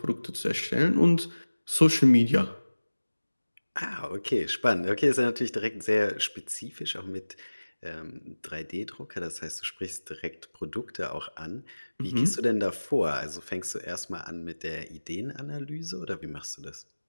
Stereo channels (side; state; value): both; inverted; correlation -1.00